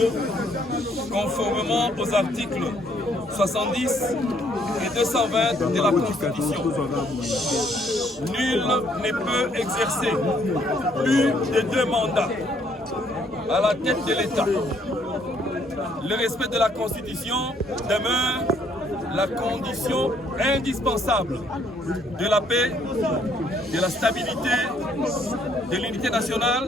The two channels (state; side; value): normal; both; correlation 0.67